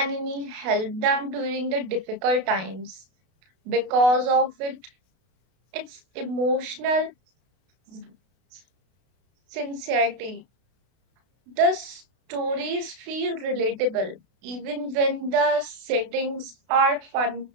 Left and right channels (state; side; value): late; left; 32 ms